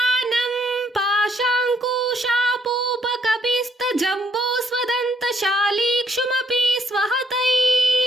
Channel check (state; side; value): normal; both; correlation 0.68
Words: ಪಾಶಾಂಕುಶಾಪೂಪ ಕಪಿಸ್ತ ಜಂಬೂ ಸ್ವದಂತ ಶಾಲೀಕ್ಷುಮಪಿ ಸ್ವಹಸ್ತೈ